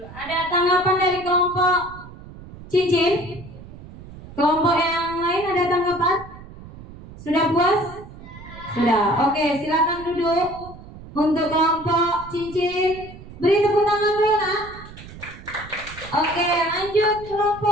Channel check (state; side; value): noise; right; rumble, 16 dB below the sound